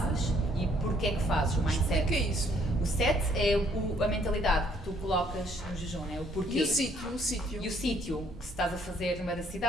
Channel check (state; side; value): normal; both; correlation 0.65